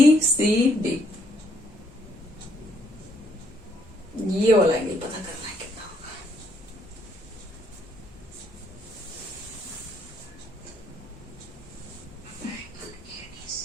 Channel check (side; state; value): both; normal; correlation 0.70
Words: ये वाला एंगल पता करना है कितना होगा।